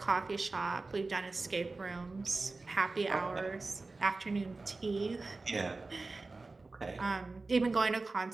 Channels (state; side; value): quieter; left; 3.5 dB